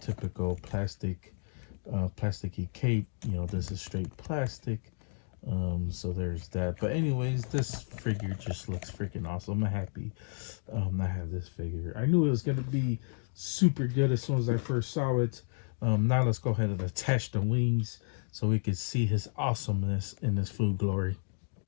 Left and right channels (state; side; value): silent; right; 56 dB below the other